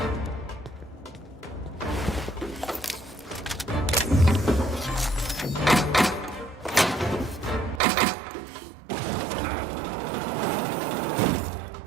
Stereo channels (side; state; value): left; drops out; at 7.8 s